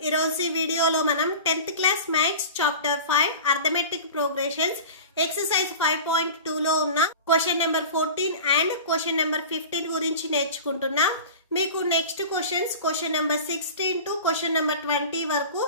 Irozi video lo manam 10th class maths chapter 5 arithmetic progressions exercise 5.2 lo unna question number 14 and question number 15 gurinchi నేర్చుకుంటున్నా. మీకు next question number 16 to question number 20 వరకు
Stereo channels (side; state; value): both; inverted; correlation -0.35